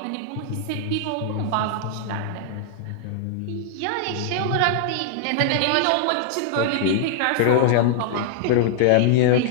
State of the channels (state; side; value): different; both; correlation -0.01